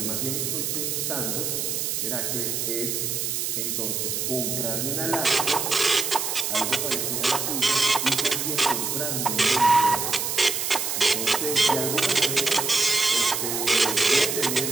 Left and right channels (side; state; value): right; noise; hiss, 1 dB below the sound